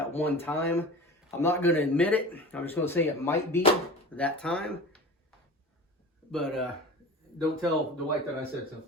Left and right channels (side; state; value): both; normal; correlation 0.36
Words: one time. I'm not going to admit it. I'm just going to say it might be that time. But don't tell Dwight that I said so.